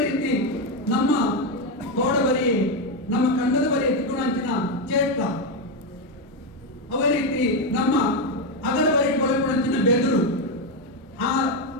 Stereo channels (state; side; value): normal; both; correlation 0.07